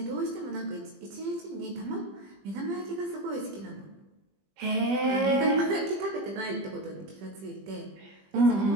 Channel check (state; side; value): late; left; 20 ms